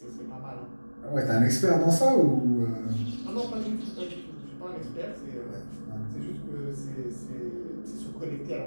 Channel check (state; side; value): inverted; both; correlation -1.00